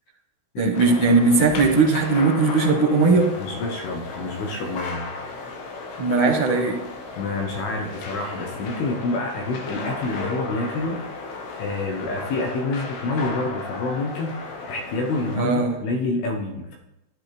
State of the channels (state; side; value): late; right; 16 ms